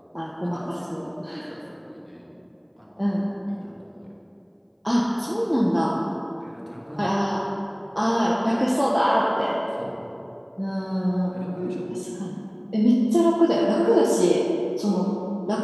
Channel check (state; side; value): identical; both; correlation 1.00